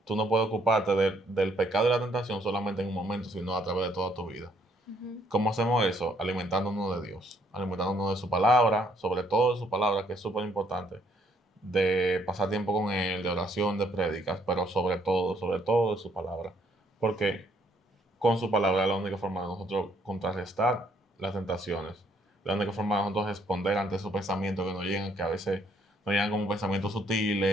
tú no puedes ocuparte del pecado y la tentación solamente en un momento, sino a través de toda tu vida. ¿Cómo hacemos eso? Alimentándonos de Dios, alimentándonos de su palabra, sobre todo de su palabra, que es súper importante, de pasar tiempo con Él, de oración, de prédicas, pero sobre todo de su palabra. Porque con su palabra es la única forma de nosotros contrarrestar las tentaciones, la única forma de nosotros responder ante esos pensamientos que nos llegan, que a veces nos llegan como pensamientos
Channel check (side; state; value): both; normal; correlation 0.68